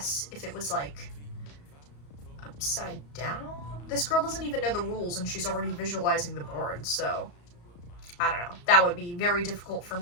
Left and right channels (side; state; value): right; late; 34 ms